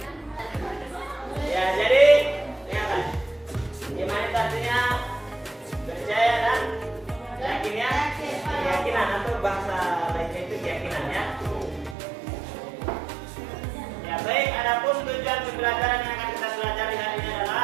Baik, adapun tujuan pembelajaran yang akan kita pelajari hari ini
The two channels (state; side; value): drops out; left; at 12.0 s